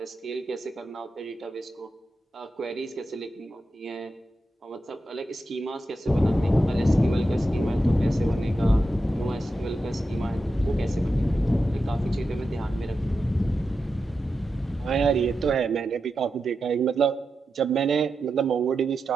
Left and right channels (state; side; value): normal; both; correlation 0.89